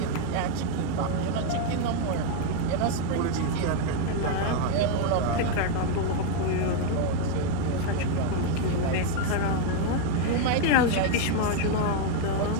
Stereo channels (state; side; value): different; both; correlation 0.01